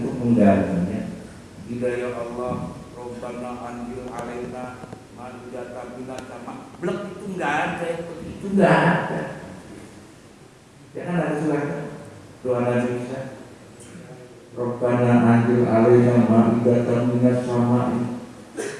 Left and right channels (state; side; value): identical; both; correlation 1.00